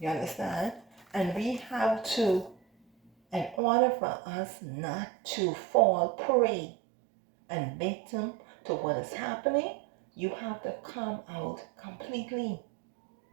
You understand? And we have to, in order for us not to fall prey and victim to what is happening, you have to come out completely.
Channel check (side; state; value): left; drops out; at 3.6 s